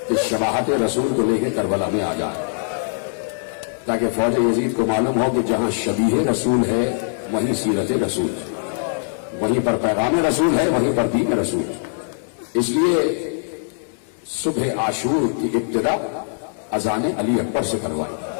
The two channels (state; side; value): silent; right; digital silence